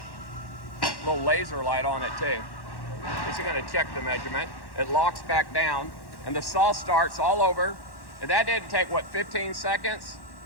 Little laser light on it too. This is going to check the measurement. It locks back down and the saw starts all over. And that didn't take, what, 15 seconds?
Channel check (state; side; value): late; right; 1.1 ms